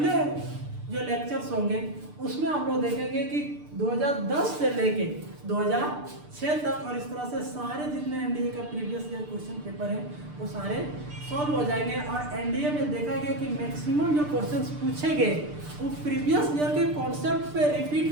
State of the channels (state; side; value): late; left; 6.7 ms